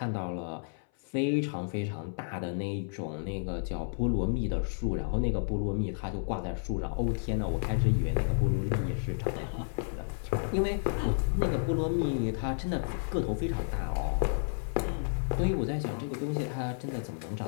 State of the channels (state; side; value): silent; right; 57 dB below the other